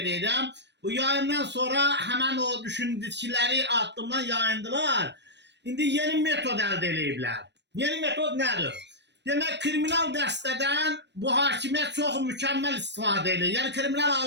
Bu yayından sonra həmən o düşündükləri addımdan yayındılar. İndi yeni metod əldə ediblər. Yeni metod nədir? Demək, kriminal dəstədən bu hakimiyyət çox mükəmməl istifadə edir. Yəni, kriminal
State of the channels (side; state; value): left; late; 0.50 ms